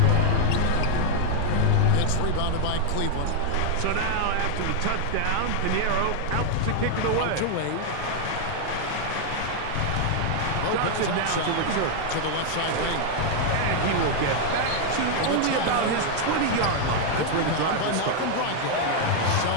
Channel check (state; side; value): different; both; correlation 0.00